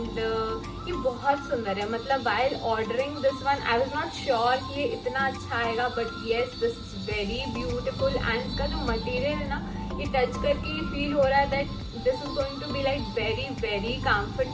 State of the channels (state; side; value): identical; both; correlation 1.00